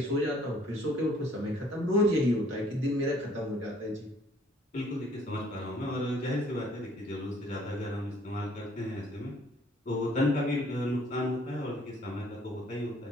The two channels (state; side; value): normal; both; correlation 0.60